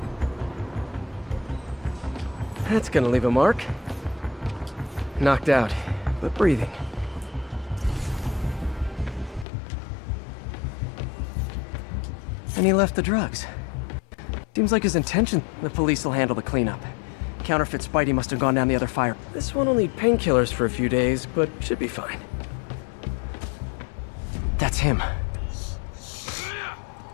That's gonna leave a mark. Knocked out, but breathing. And he left the drugs. Seems like his intention. The police will handle the cleanup. Counterfeit Spidey must have gone down the other fire. This one will need painkillers for a few days, but should be fine. That's him.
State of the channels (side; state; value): right; drops out; at 9.5 s